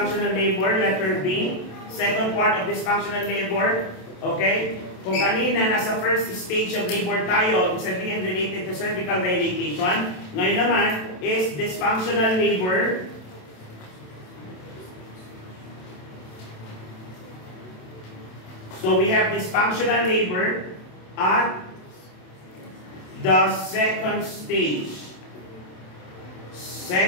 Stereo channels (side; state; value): right; late; 27 ms